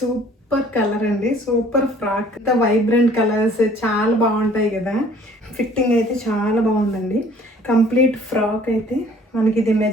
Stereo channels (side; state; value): both; normal; correlation 0.55